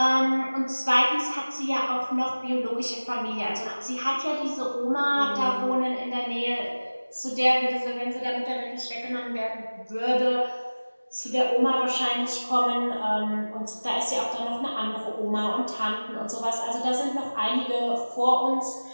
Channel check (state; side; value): inverted; both; correlation -1.00